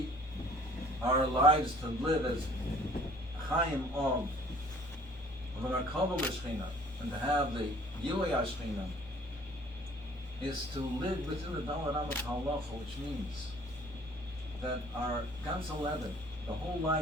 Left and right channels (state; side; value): normal; both; correlation 0.54